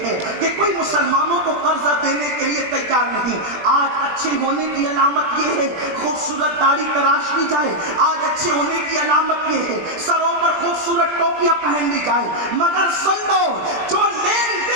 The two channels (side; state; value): left; late; 20 ms